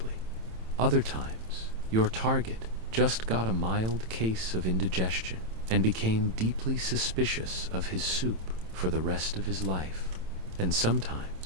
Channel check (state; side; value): late; left; 27 ms